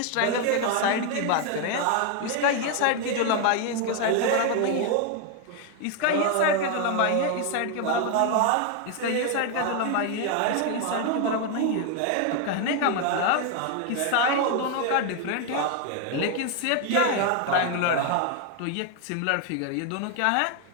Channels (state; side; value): different; both; correlation 0.01